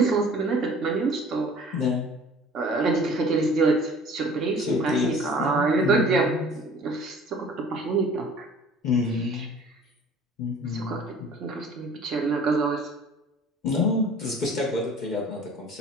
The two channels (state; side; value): normal; both; correlation 0.48